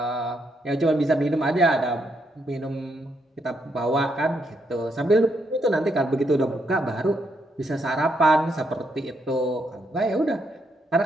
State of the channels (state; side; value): normal; both; correlation 0.77